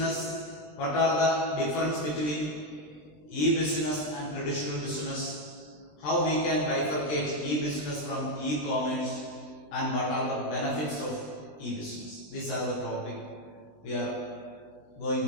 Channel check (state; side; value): late; right; 20 ms